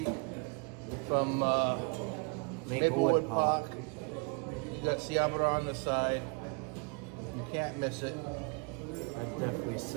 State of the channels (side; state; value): left; quieter; 34.2 dB